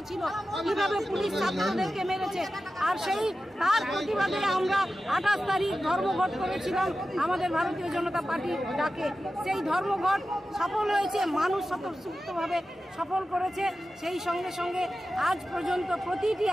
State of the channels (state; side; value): normal; both; correlation 0.93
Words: ছিল কিভাবে পুলিশ ছাত্রদেরকে মেরেছে। আর সেই তার প্রতিবাদে আমরা 28 তারিখ ধর্মঘট করেছিলাম আমাদের ভারতীয় জনতা পার্টির ডাকে। সেই ধর্মঘট সফল হয়েছে মানুষ স্বতঃস্ফূর্তভাবে সফল করেছে। সেই সঙ্গে সঙ্গে আজ পর্যন্ত প্রতিটি